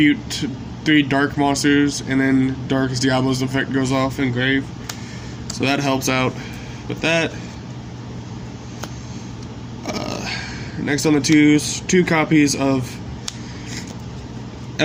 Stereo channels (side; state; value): both; identical; correlation 1.00